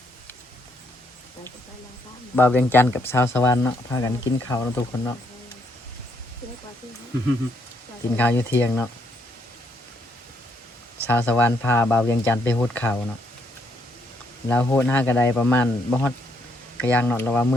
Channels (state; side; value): normal; both; correlation 0.74